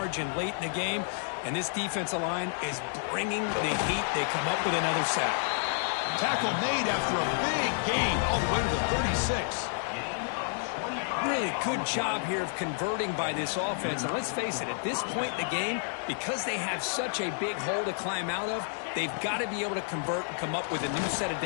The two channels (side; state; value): right; silent; digital silence